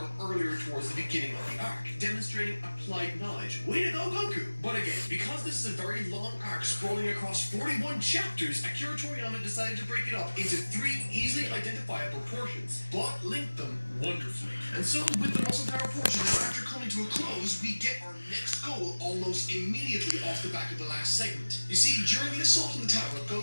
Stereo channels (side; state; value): both; inverted; correlation -1.00